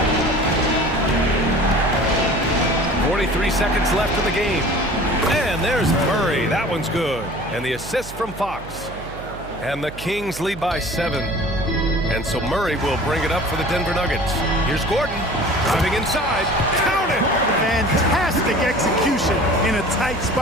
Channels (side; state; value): right; noise; hum, 14 dB below the sound